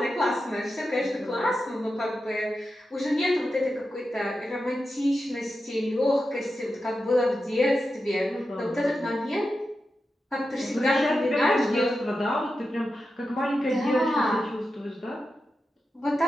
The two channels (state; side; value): normal; both; correlation 0.90